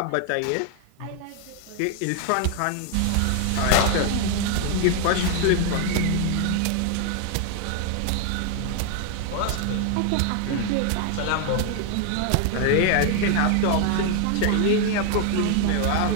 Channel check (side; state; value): both; different; correlation 0.00